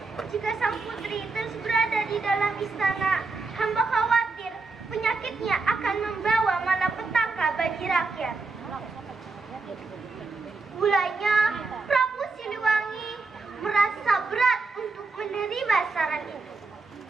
Jika sang putri terus berada di dalam istana, hamba khawatir penyakitnya akan membawa malapetaka bagi rakyat. Mulanya, Prabu Siliwangi merasa berat untuk menerima saran itu.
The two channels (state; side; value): quieter; left; 3.9 dB